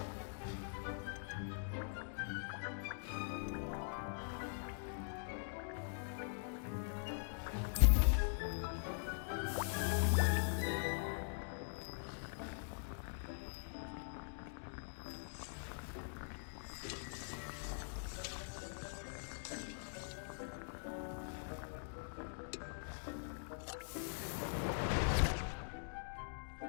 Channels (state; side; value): silent; right; digital silence